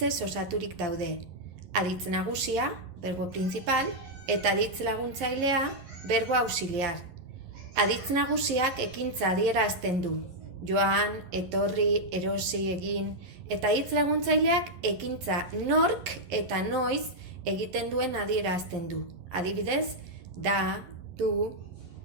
osaturik daude. Aditz nagusia, verbo principal, eta aditz laguntzailea, verbo auxiliar. Aditz nagusiak ekintza adierazten du. Joan, etorri, erosi, egin, eta hitz laguntzaileak ekintza nork eta noiz egiten duen adierazten du. Adibidez, da, du.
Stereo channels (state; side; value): late; left; 11 ms